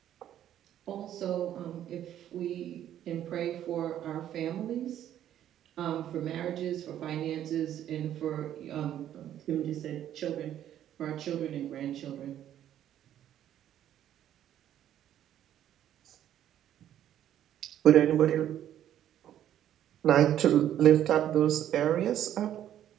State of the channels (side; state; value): left; quieter; 11.2 dB